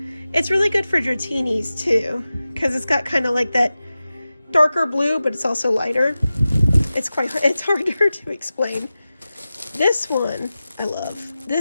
It's really good for Dratinis too, because it's got kind of that darker blue, but it's also lighter. It's harder to explain. This one I love.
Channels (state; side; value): inverted; both; correlation -0.95